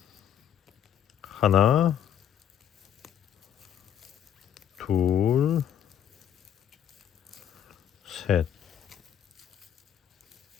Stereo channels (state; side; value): quieter; right; 9.5 dB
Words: 하나 둘 셋